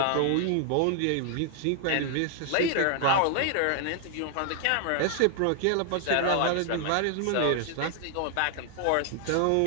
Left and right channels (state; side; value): different; both; correlation 0.00